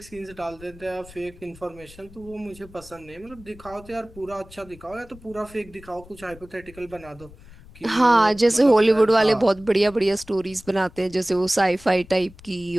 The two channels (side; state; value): left; noise; rumble, 21 dB below the sound